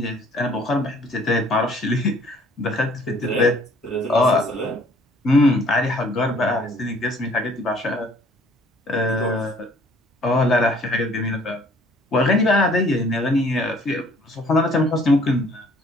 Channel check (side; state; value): both; normal; correlation 0.58